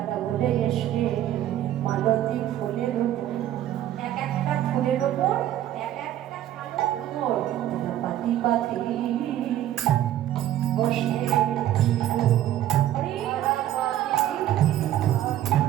বলে এসে মালতী ফুলের ওপর, এক একটা ফুলের ওপর এক একটা কালো ভ্রমর তারা পাতি পাতি বসে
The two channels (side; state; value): left; quieter; 12.4 dB